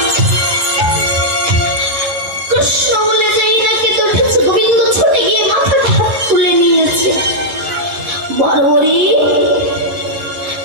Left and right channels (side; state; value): left; late; 11 ms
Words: কৃষ্ণ বলে যাই না কে তো উঠেছে, গোবিন্দ ছুটে গিয়ে মাথাটা তুলে নিয়েছে। বর্বরী,